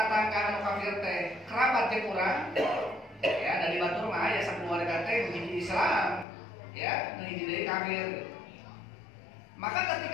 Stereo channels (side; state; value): right; drops out; at 6.2 s